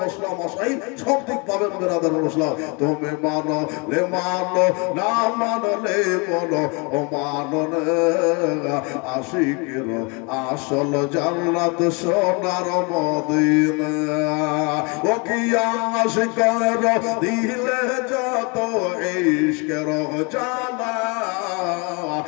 মশলা মশাই সব দিক পাবেন বেরাদার মুসলিম। তুমি মানো লে মানো, না মানলে বলো ও মানো না। আশিকের আসল জান্নাত সোনার মদিনা। ও কি আশিকের দিলে যত ইশকের জালা,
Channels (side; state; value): right; quieter; 31.3 dB